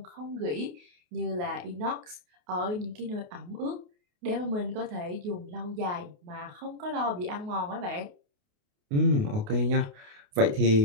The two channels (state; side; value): late; left; 28 ms